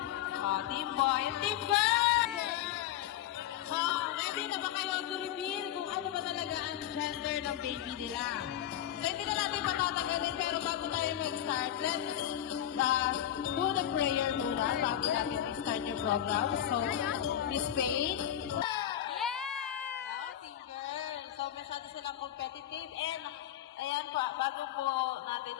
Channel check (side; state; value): right; quieter; 11.5 dB